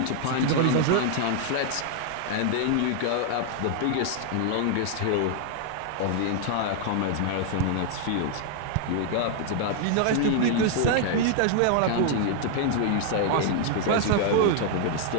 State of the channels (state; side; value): different; both; correlation 0.00